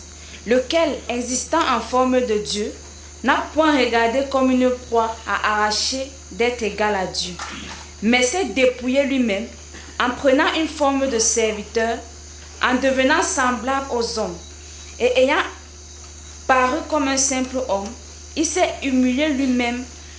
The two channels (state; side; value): identical; both; correlation 1.00